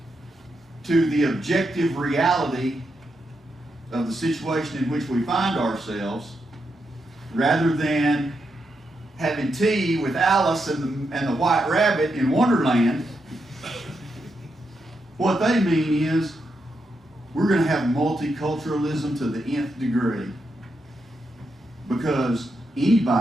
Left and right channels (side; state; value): both; normal; correlation 0.83